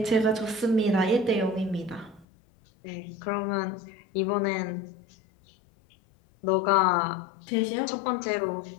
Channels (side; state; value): right; drops out; at 2.2 s